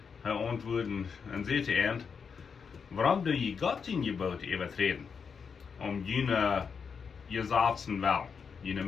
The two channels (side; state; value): right; quieter; 6.1 dB